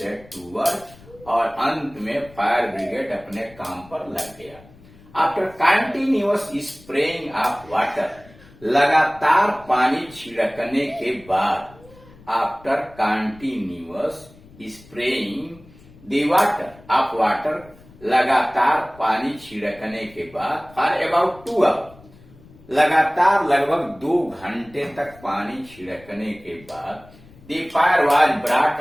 to work, और अंत में फायर ब्रिगेड अपने काम पर लग गया। After continuous spraying of water, लगातार पानी छिड़कने के बाद, after continuous spraying the water of water, लगातार पानी छिड़कने के बाद, फॉर अबाउट 2 आवर, लगातार लगभग 2 घंटे तक पानी छिड़कने के बाद, the fire was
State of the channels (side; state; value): left; noise; rumble, 23 dB below the sound